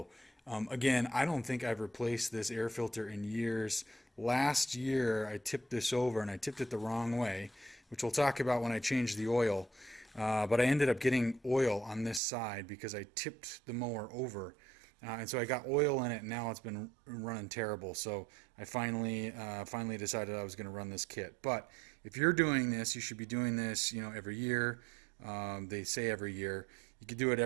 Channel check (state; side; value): drops out; left; at 12.2 s